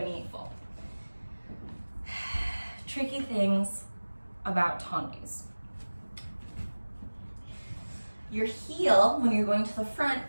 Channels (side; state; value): both; inverted; correlation -1.00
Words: Tricky things about tendus. Your heel, when you're going to the front,